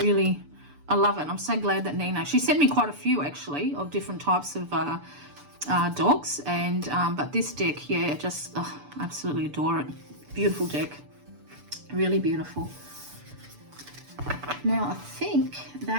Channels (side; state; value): left; late; 6.9 ms